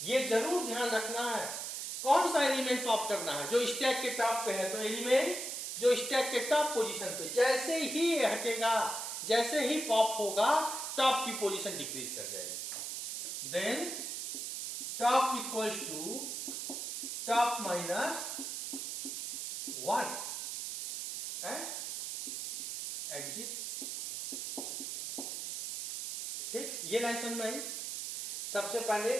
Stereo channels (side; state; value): right; noise; hiss, 5 dB below the sound